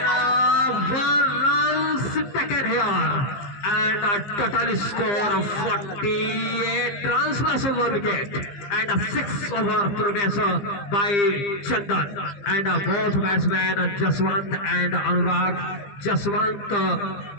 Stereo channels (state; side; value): late; right; 15 ms